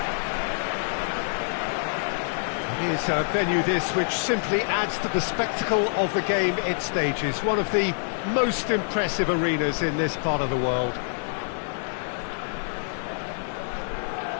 It is a venue this which simply adds to the spectacle of the game it stages. One of the most impressive arenas in this part of the world.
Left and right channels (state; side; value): silent; right; 57 dB below the other